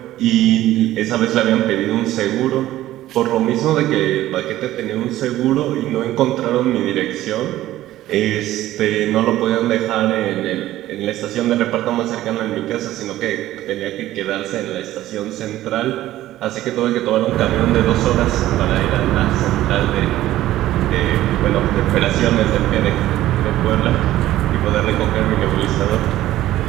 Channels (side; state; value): left; quieter; 14.6 dB